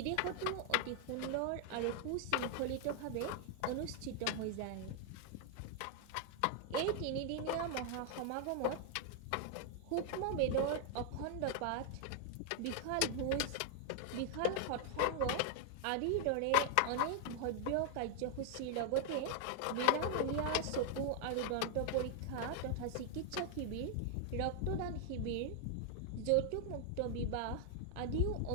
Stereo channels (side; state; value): both; different; correlation 0.00